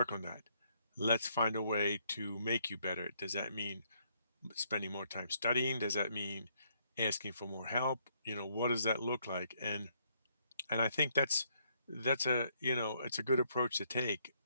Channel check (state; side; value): inverted; both; correlation -0.70